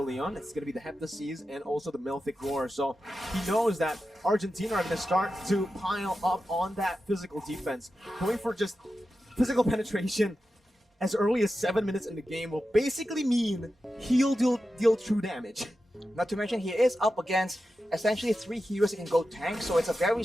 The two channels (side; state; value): both; normal; correlation 0.91